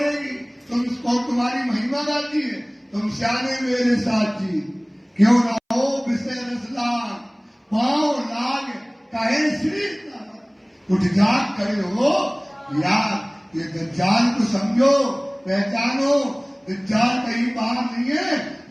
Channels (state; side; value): identical; both; correlation 1.00